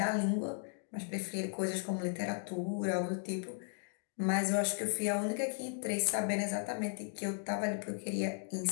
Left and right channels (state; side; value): silent; right; 54 dB below the other